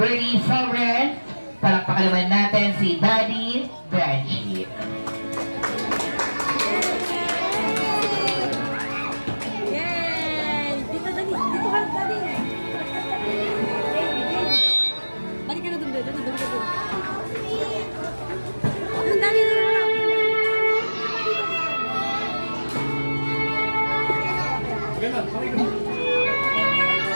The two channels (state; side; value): inverted; both; correlation -1.00